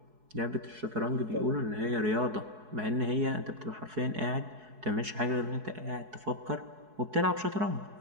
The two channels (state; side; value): late; left; 4.7 ms